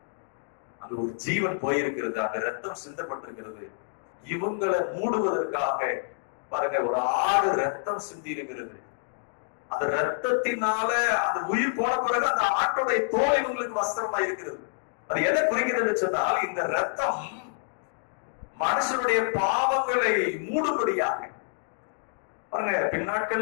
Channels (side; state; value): right; silent; digital silence